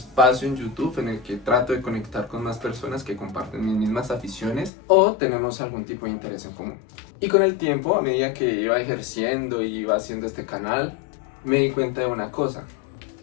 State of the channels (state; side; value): drops out; right; at 4.7 s